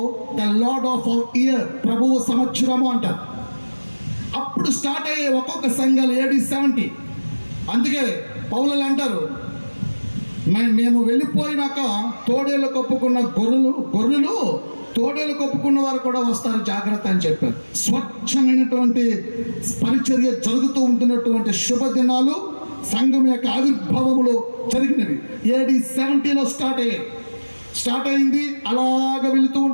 ద లార్డ్ ఆఫ్ ఇయర్, ప్రభువు సంవత్సరము అంటారు. అప్పుడు స్టార్ట్ అయ్యే ఒక్కొక్క సంఘాలు AD 70. అందుకే పౌలు అంటారు, మేము వెళ్ళిపోయినాక తోడేళ్ళు కప్పుకున్న గొర్రెలు తోడేలు కప్పుకున్న వారు కూడా వస్తారు, జాగ్రత్త అని చెప్పారు. స్వచ్ఛమైనటువంటి పరిచర్య జరుగుతూ ఉంటున్నటువంటి శుభదినాలు సంఘం యొక్క ఆవిర్భావములో జరిగినవి. AD 70లో స్టార్ట్ అయింది. అలాగ వెళుతూ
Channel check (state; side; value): inverted; both; correlation -1.00